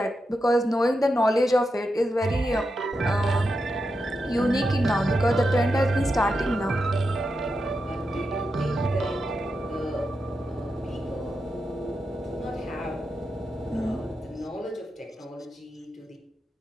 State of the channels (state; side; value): normal; both; correlation 0.87